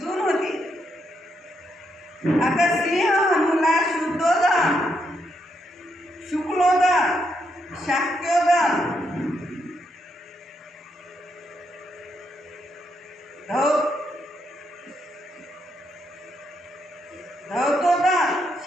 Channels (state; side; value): normal; both; correlation 0.79